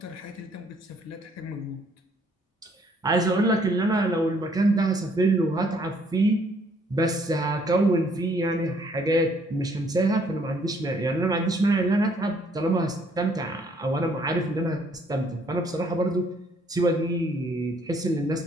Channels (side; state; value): both; normal; correlation 0.65